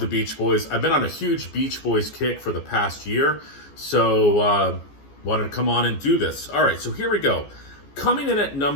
Beach Boys. I've been on a huge Beach Boys kick for the past year, so wanted to come on and do this. All right, so here we go. Coming in at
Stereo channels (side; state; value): right; late; 14 ms